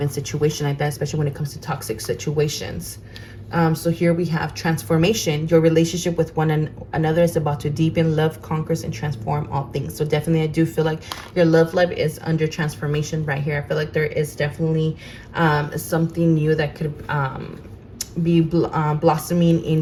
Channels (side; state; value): both; identical; correlation 1.00